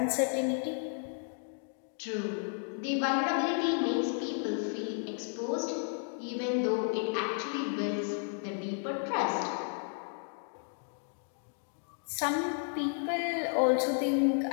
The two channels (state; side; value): silent; right; 56 dB below the other